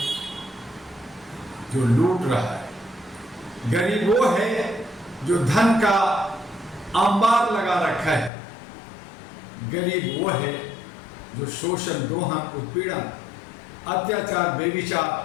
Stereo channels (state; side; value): drops out; right; at 8.3 s